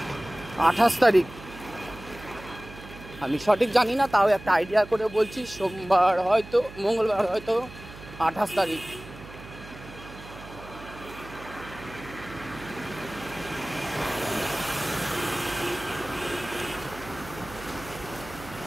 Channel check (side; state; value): right; noise; hum, 16 dB below the sound